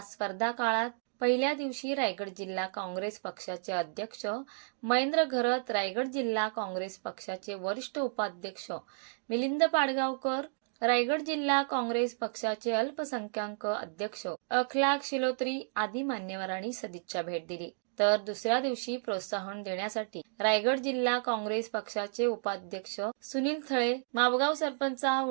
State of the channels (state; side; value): silent; left; digital silence